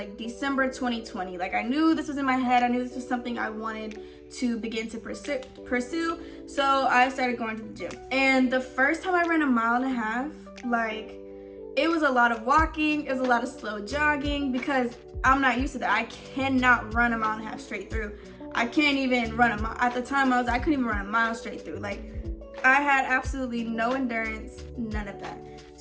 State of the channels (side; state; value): both; identical; correlation 1.00